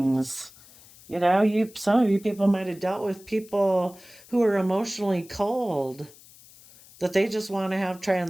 You know, some of you people might have dealt with people who are emotionally cold, that they just want to have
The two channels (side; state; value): left; noise; hiss, 23 dB below the sound